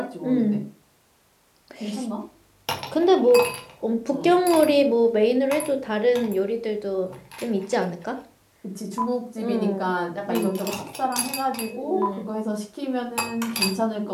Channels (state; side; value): identical; both; correlation 1.00